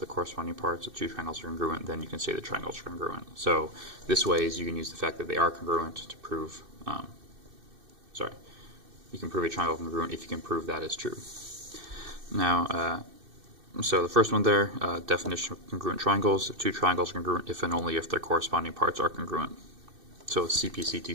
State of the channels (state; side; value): late; left; 2.6 ms